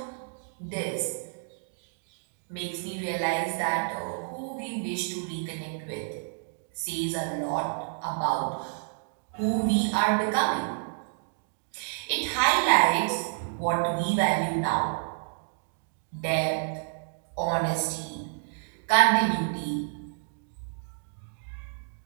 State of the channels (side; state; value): left; silent; digital silence